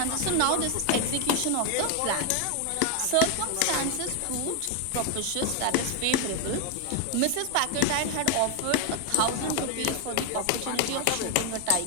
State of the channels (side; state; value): both; different; correlation 0.01